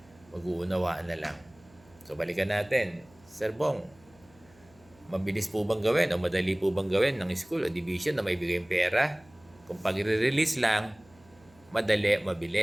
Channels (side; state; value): right; noise; hum, 28 dB below the sound